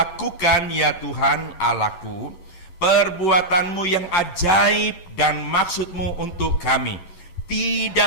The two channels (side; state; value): right; late; 11 ms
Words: ya Tuhan Allahku, perbuatanmu yang ajaib dan maksudmu untuk kami.